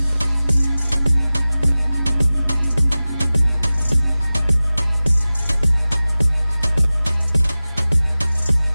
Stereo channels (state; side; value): inverted; both; correlation -0.97